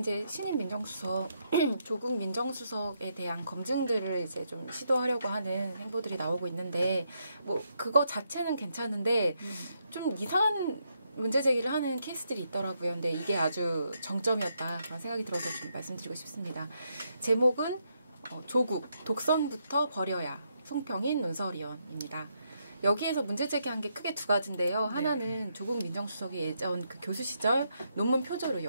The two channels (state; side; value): inverted; both; correlation -0.79